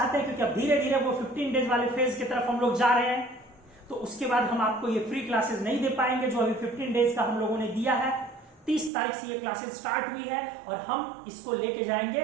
हैं, क्योंकि अब धीरे धीरे वो 15 डेज वाले फेज की तरफ हम लोग जा रहे हैं, तो उसके बाद हम आपको ये फ्री क्लासेस नहीं दे पाएंगे जो अभी 15 डेज का हम लोगों ने दिया है। 30 तारीख से ये क्लासेस स्टार्ट हुई है और हम इसको लेके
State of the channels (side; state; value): left; drops out; at 8.9 s